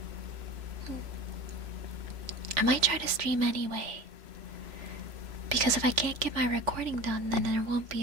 try to stream anyway. Because if I can't get my recording done, then there won't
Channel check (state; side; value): late; left; 3.4 ms